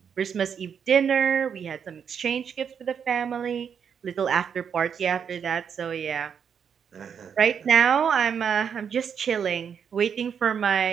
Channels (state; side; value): quieter; left; 7.4 dB